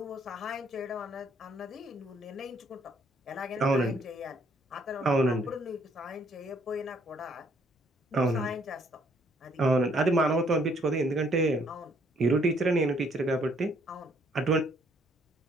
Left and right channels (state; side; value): normal; both; correlation 0.66